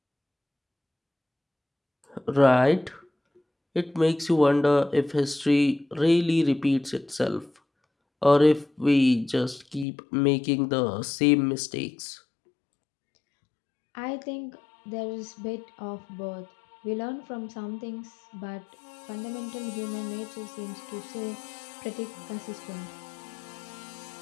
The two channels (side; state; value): right; drops out; at 9.9 s